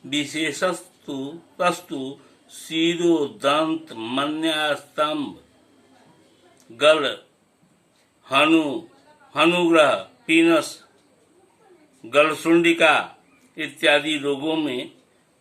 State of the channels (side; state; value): both; identical; correlation 1.00